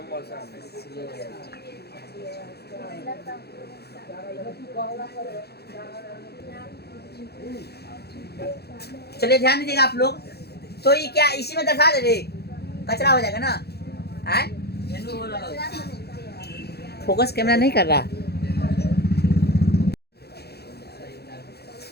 चलिए ध्यान दीजिएगा आप लोग, तो ये क्या इसी में दर्शा दे रे, कचरा हो जाएगा ना, है मेनू हो रहा है। फोकस कैमरा नहीं कर रहा।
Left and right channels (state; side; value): late; right; 0.47 ms